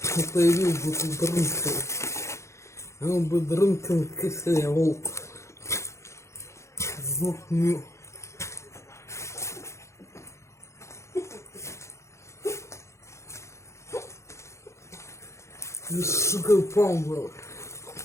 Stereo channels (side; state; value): right; late; 0.14 ms